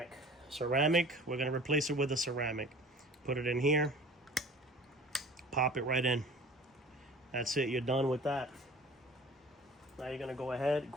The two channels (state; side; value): normal; both; correlation 0.45